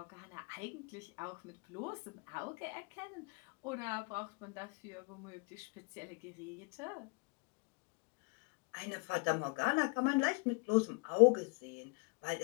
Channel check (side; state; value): right; quieter; 32.2 dB